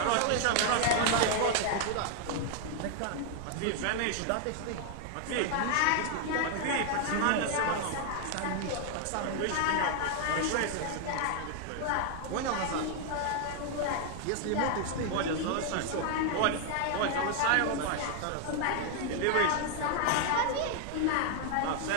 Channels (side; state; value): both; different; correlation 0.00